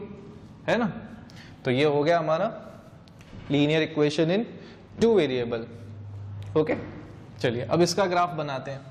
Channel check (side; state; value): both; identical; correlation 1.00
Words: है ना। तो ये हो गया हमारा linear equation in 2 variable, okay. चलिए अब इसका ग्राफ बनाते हैं,